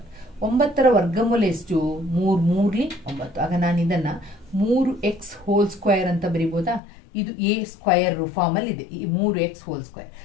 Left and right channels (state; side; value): drops out; right; at 6.8 s